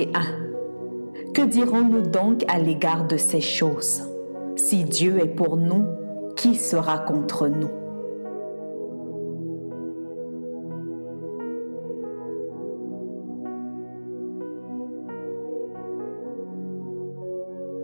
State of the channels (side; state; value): both; inverted; correlation -1.00